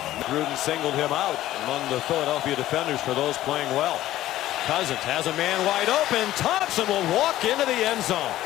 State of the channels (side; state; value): right; quieter; 14.3 dB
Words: Gruden singled him out among the Philadelphia defenders for those playing well. Cousins has a man wide open. Thompson will walk into the end zone.